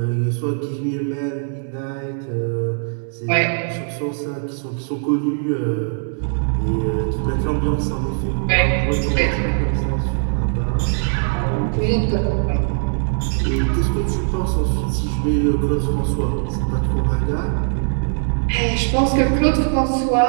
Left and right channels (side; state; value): left; silent; digital silence